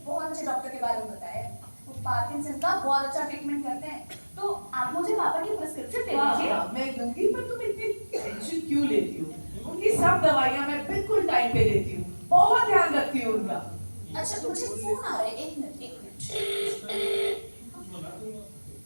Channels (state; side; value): inverted; both; correlation -1.00